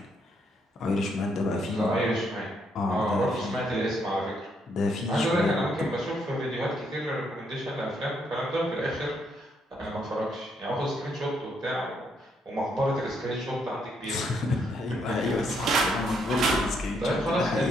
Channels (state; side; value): normal; both; correlation 0.74